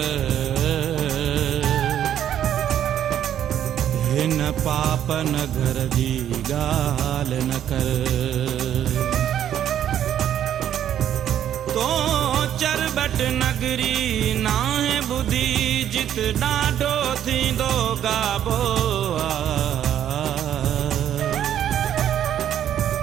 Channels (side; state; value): left; quieter; 10.4 dB